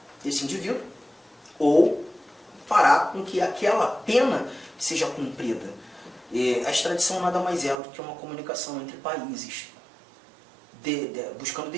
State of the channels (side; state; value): left; drops out; at 7.8 s